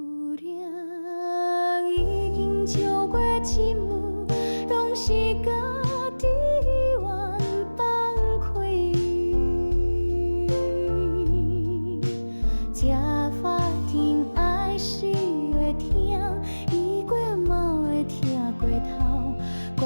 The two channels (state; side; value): inverted; both; correlation -1.00